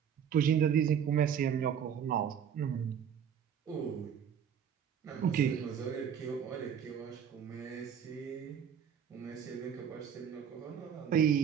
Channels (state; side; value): quieter; left; 8.2 dB